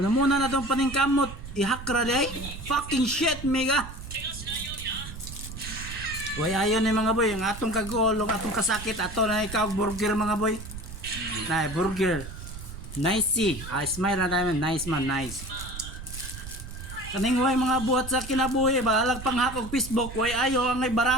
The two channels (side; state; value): right; noise; rumble, 11 dB below the sound